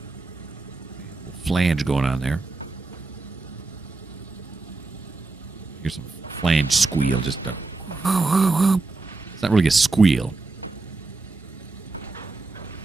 Flange going on there. Here's some flange squeal. Just it's not really a squeal.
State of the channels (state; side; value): quieter; left; 3.5 dB